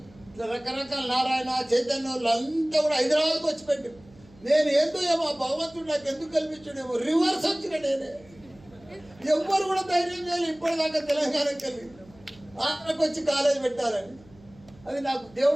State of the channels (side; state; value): right; noise; hum, 25 dB below the sound